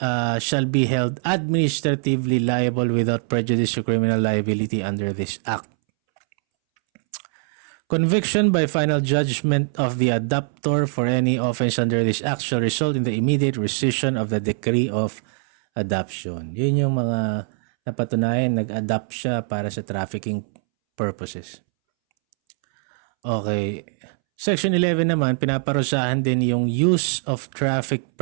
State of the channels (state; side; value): silent; left; 64 dB below the other